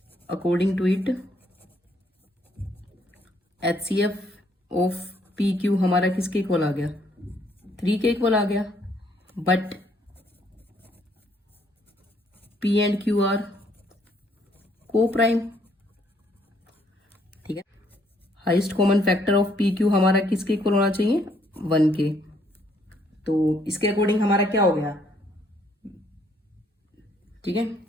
to it HCF of P Q हमारा किसके इक्वल आ गया, 3 के इक्वल आ गया। But P and Q are को प्राइम। ठीक है, highest common factor of P Q हमारा किसके इक्वल होना चाहिए, 1 के। तो इसके अकॉर्डिंग हमारा क्या हो गया, ठीक है,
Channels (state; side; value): normal; both; correlation 0.68